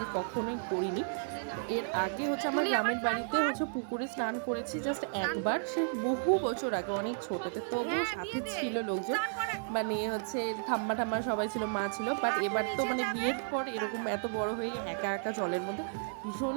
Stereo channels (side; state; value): left; silent; digital silence